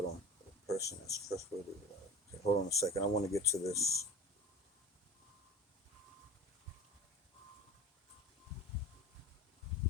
on. A person that's trustworthy. Okay, hold on a second. I want to get to this.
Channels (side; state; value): both; normal; correlation 0.33